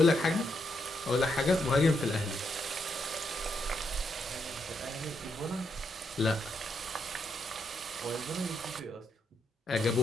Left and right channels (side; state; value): both; normal; correlation 0.79